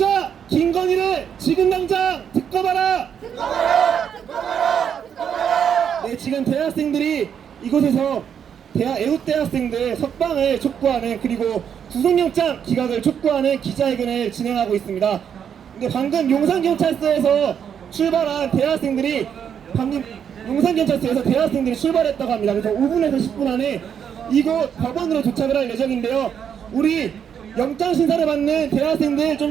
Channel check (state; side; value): quieter; left; 8.1 dB